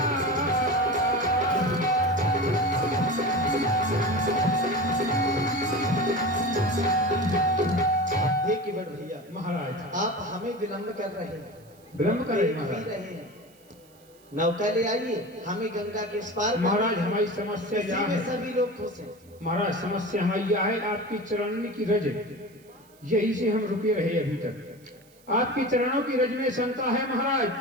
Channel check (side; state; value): right; noise; hiss, 29 dB below the sound